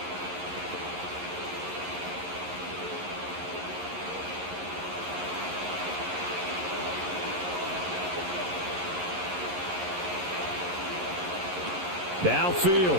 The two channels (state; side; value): late; left; 11 ms